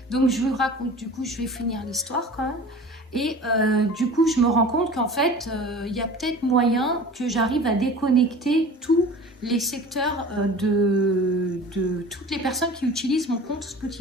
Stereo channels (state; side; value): normal; both; correlation 0.40